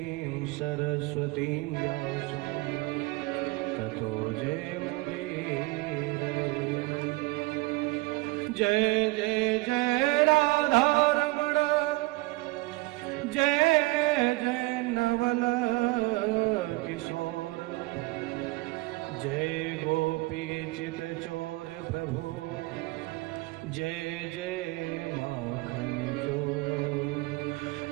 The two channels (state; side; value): quieter; left; 22.3 dB